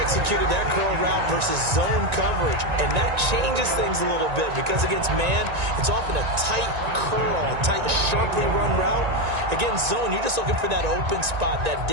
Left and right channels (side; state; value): left; late; 1.9 ms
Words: executed that curl route versus zone coverage, and that changes things a little bit because against man, it's often a tight curl, tight, sharply run route. Against zone, you're just looking for that open spot, that